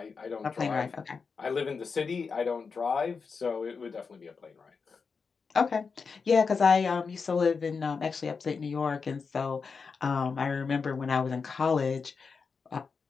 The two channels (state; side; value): quieter; right; 5.2 dB